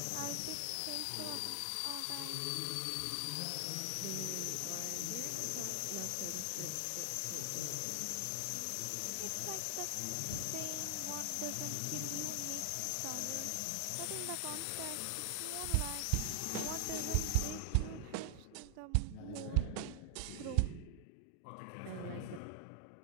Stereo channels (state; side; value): different; both; correlation 0.00